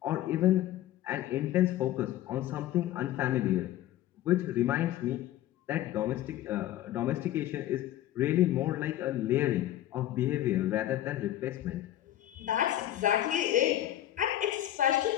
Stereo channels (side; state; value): right; quieter; 13.2 dB